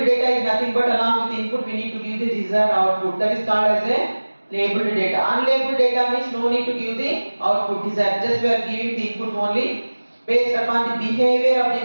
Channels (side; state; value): both; inverted; correlation -1.00